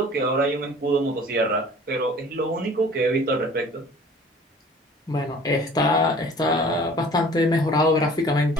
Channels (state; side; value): normal; both; correlation 0.48